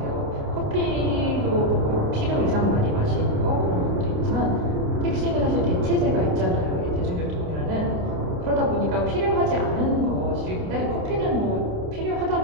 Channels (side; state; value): left; late; 29 ms